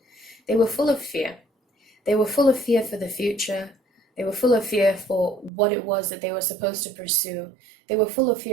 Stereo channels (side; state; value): left; drops out; at 5.5 s